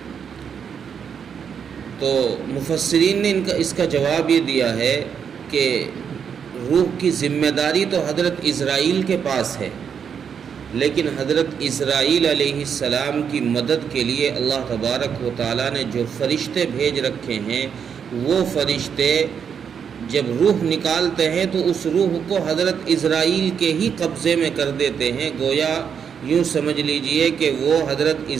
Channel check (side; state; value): left; quieter; 7.3 dB